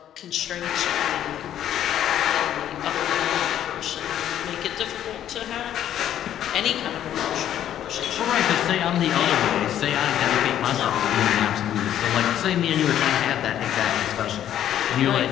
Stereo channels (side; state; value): right; quieter; 11.0 dB